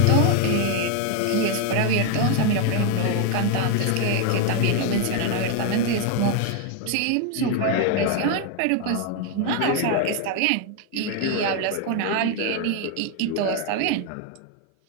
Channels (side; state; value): both; different; correlation 0.01